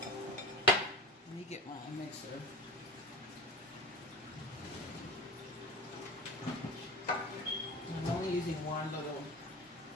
Let me get my mixer. I'm only using one little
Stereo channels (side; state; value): both; normal; correlation 0.34